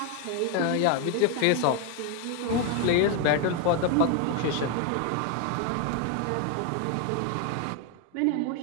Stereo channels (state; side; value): different; both; correlation 0.01